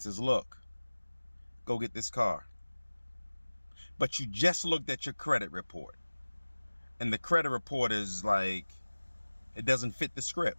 says, look, go get this car. But you just looked at your credit report, and the credit report is like, it doesn't fit the script.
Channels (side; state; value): both; inverted; correlation -1.00